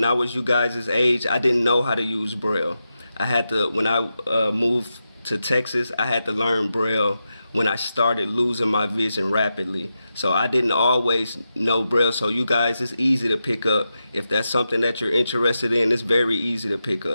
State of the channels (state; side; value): inverted; both; correlation -0.89